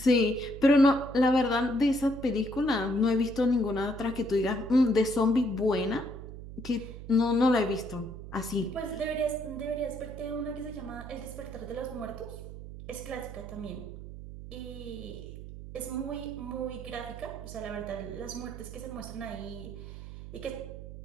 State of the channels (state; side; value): noise; right; hum, 11 dB below the sound